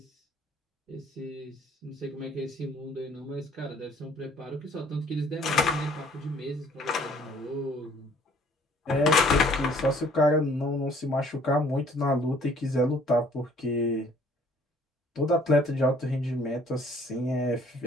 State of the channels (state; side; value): normal; both; correlation 0.58